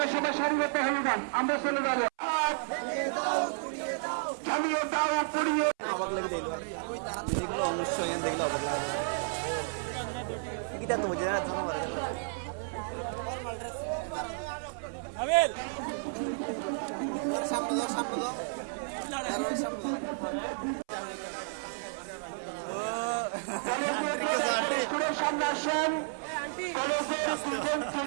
সবাই সারিবদ্ধ হয়ে যান, আমরা চলে যাবো। জ্বালিয়ে দাও, পুড়িয়ে সামনে আসেন,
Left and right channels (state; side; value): silent; left; 57 dB below the other